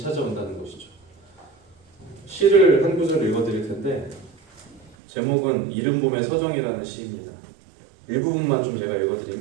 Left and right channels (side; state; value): left; drops out; at 5.0 s